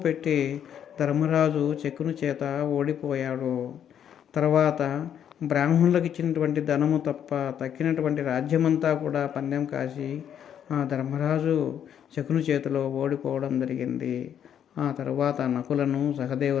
పెట్టి ధర్మరాజు శకుని చేత ఓడిపోయాడు. తర్వాత బ్రాహ్మణులకు ఇచ్చినటువంటి ధనము తప్ప తక్కినటువంటి రాజ్యమంతా కూడా పందెం కాసి ఆ ధర్మరాజు శకుని చేతిలో ఓడిపోవడం జరిగింది. ఆ తర్వాత నకులను,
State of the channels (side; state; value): right; quieter; 9.2 dB